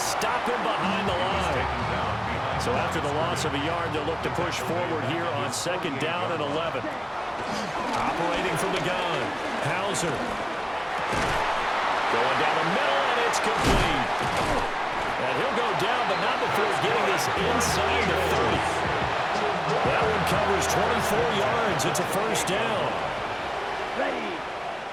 him behind the line. So after the loss of a yard, they'll look to push forward here on 2nd down and 11. Operating from the gun, Hauser. Going down the middle, and it's complete. And he'll go down, but not before getting this inside the 30. That one covers 24 yards. It's a 1st down. Ready.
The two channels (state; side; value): identical; both; correlation 1.00